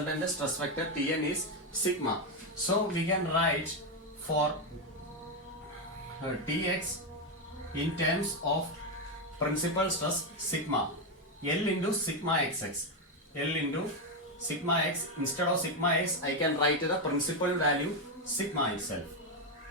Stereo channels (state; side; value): normal; both; correlation 0.07